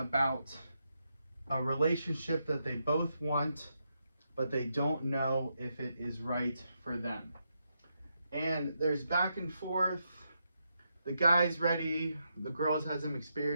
a relationship that they both want, but they don't know if it is right for them. And there's back and forth. The guy's ready. The girl has some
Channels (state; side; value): inverted; both; correlation -0.83